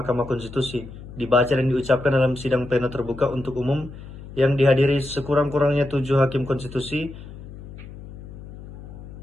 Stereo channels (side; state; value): left; noise; hum, 14 dB below the sound